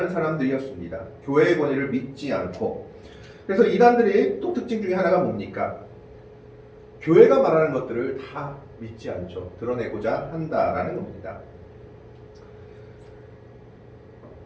사람들이었습니다. 교회의 권위를 믿지 않고. 그래서 이단들의 또 특징 중에 하나가 뭡니까? 교회가 말하는 것들을 다 믿지 않죠. 드러내고자 한다라는 겁니다.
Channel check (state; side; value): identical; both; correlation 1.00